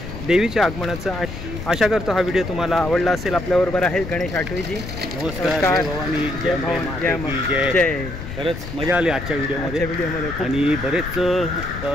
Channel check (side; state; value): left; noise; rumble, 9 dB below the sound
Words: देवीच्या आगमनाचं आशा करतो हा व्हिडिओ तुम्हाला आवडला असेल. आपल्याबरोबर आहेत गणेश आठवेजी. नमस्कार. जय भवानी, जय भवानी, जय. खरंच मजा आली आजच्या व्हिडिओमध्ये आणि बरेच